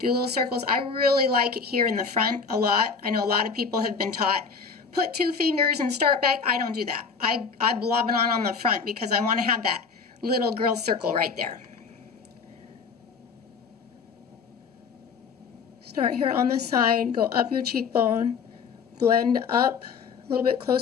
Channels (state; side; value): quieter; right; 5.5 dB